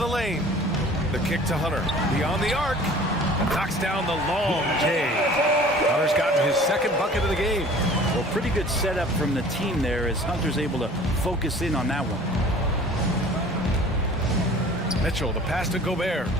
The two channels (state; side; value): normal; both; correlation 0.47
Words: lane. The kick to Hunter, beyond the arc, and knocks down the long J. Hunter's gotten his second bucket of the game. Well, pretty good setup from the team there as Hunter's able to focus in on that one. Mitchell, the pass to Gobert.